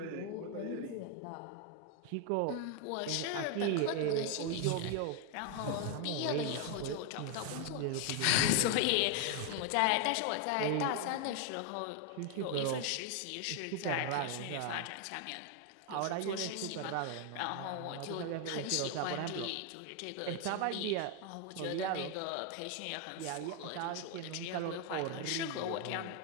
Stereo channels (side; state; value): both; different; correlation 0.01